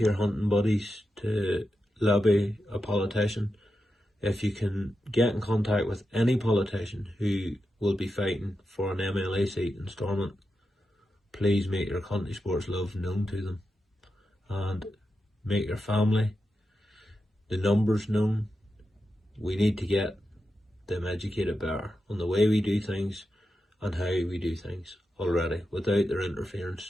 your hunting buddies to lobby a politician. If you can get in contact with any politician who will be fighting for an MLA seat in Stormont, please make your country sports love known to them and make your family, the numbers known. We need to get them educated better on the way we do things and how we do things already without their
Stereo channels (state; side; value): normal; both; correlation 0.89